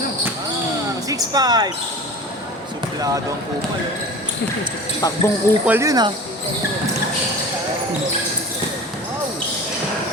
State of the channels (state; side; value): normal; both; correlation 0.37